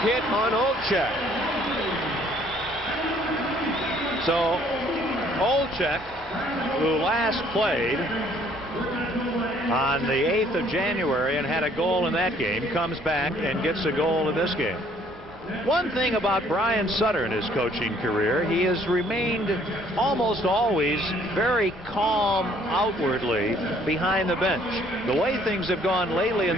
hit on Olczyk. So Olczyk, who last played on the 8th of January and had a goal in that game, comes back and gets a goal in this game. One thing about Brian Sutter in his coaching career, he has remained almost always very calm outwardly behind the bench. The way things have gone lately in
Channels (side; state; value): both; normal; correlation 0.61